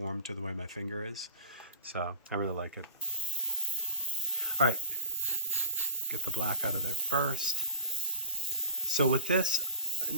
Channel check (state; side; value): inverted; both; correlation -0.37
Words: to the way my finger is. So I really like it. All right, get the black out of there first. So with this,